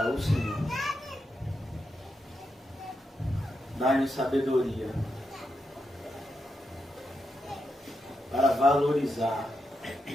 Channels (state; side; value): normal; both; correlation 0.85